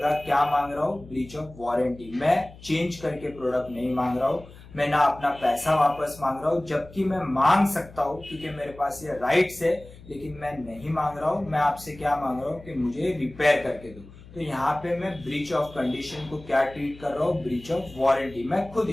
क्या मांग रहा हूँ? Breach of warranty. मैं चेंज करके प्रोडक्ट नहीं मांग रहा हूँ, मैं ना अपना पैसा वापस मांग रहा हूँ, जबकि मैं मांग सकता हूँ क्योंकि मेरे पास ये राइट्स है, लेकिन मैं नहीं मांग रहा हूँ। मैं आपसे क्या मांग रहा हूँ कि मुझे रिपेयर करके दो। तो यहाँ पे मैं ब्रीच ऑफ कंडीशन को क्या ट्रीट कर रहा हूँ? ब्रीच ऑफ वारंटी मैं खुद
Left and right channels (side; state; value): left; noise; hum, 20 dB below the sound